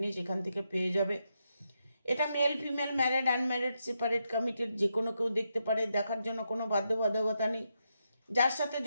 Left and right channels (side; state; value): both; inverted; correlation -0.83